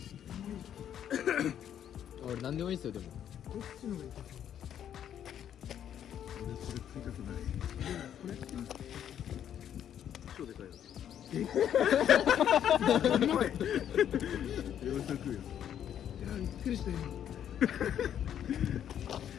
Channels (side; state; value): right; quieter; 9.8 dB